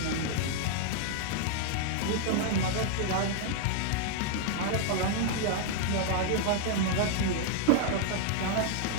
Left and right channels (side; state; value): both; different; correlation -0.01